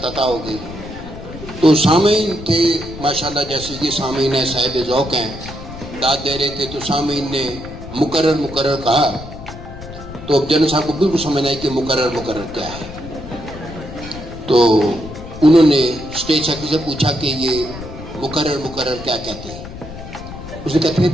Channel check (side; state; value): left; noise; rumble, 12 dB below the sound